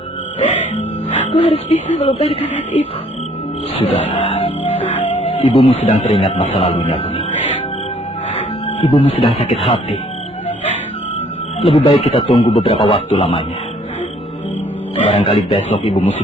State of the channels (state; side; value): normal; both; correlation 0.61